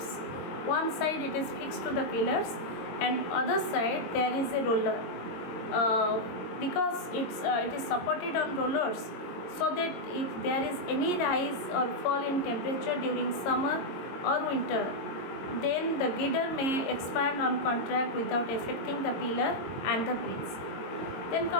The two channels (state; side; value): late; right; 22 ms